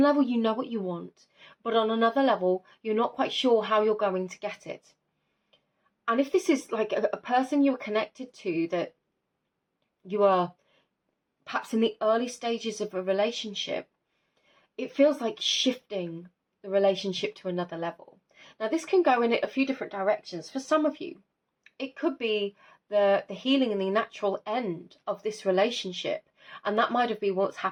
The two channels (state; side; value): identical; both; correlation 1.00